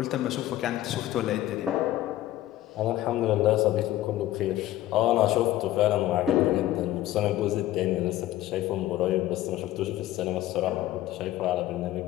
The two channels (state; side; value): quieter; right; 14.6 dB